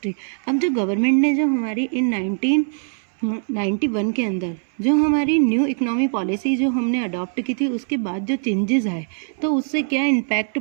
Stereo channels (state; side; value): silent; left; 65 dB below the other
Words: अब जो गवर्नमेंट ने जो हमारी इन 1991 के अंदर जो हमारी न्यू इकोनॉमी पॉलिसी जो हमने अडॉप्ट की थी, उसके बाद जो चेंजेस आए तो उससे क्या इम्पैक्ट